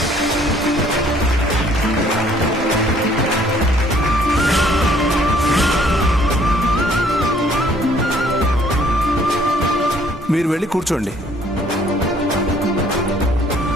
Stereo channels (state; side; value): normal; both; correlation 0.61